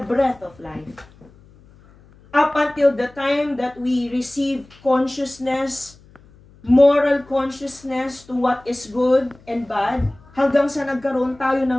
breath of life. Up until the time that we receive consciousness, moral consciousness to what is good and bad, hanggang sa nagkaroon tayo ng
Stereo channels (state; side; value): noise; left; hum, 26 dB below the sound